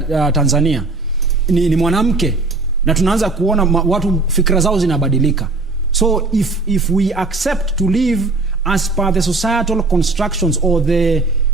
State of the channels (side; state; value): left; quieter; 3.5 dB